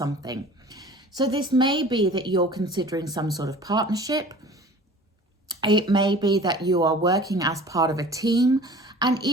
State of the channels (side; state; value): both; normal; correlation 0.44